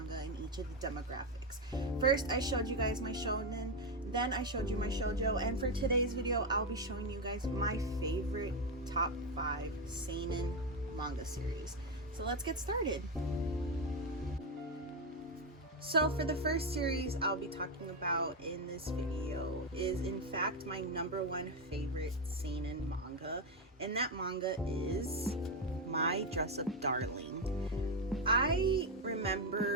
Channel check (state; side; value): normal; both; correlation 0.08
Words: in each of the demographics. First, I showed you guys my shonen, then I showed you my shoujo, and for today's video, I'll be showing you guys my favorite top 5 seinen manga series. So let's get started. So for the first series I'll be talking about in this video is in fact my #1 favorite seinen manga, and that manga is My DressUp Darling. I